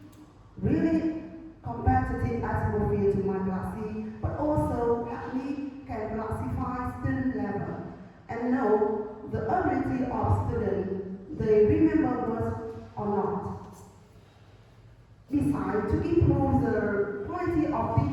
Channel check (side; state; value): both; identical; correlation 1.00